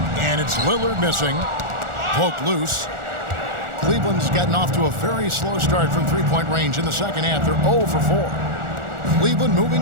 And it's Lillard missing. Poke loose. Cleveland's gotten off to a very slow start from three-point range in the second half. They're 0 for 4. Cleveland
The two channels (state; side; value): late; left; 1.4 ms